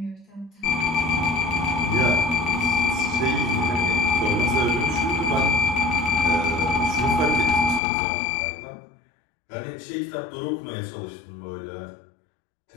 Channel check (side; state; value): right; drops out; at 7.8 s